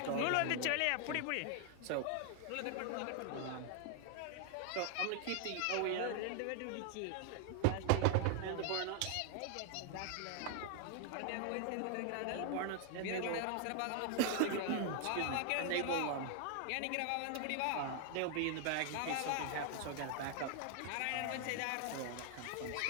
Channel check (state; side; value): different; both; correlation 0.00